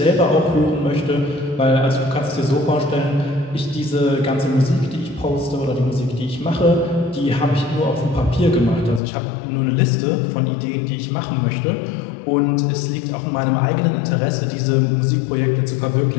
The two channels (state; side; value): drops out; right; at 9.0 s